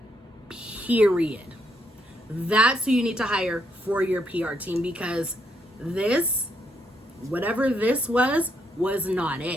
Period. That's who you need to hire for your PR team, because this, whatever this was not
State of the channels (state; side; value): normal; both; correlation 0.75